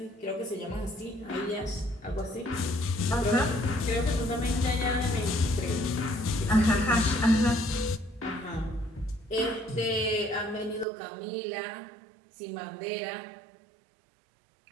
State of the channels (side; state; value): left; drops out; at 10.9 s